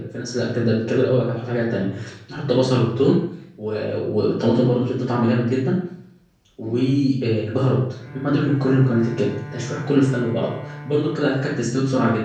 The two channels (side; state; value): both; identical; correlation 1.00